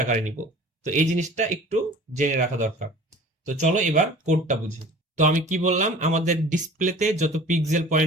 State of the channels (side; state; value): both; normal; correlation 0.45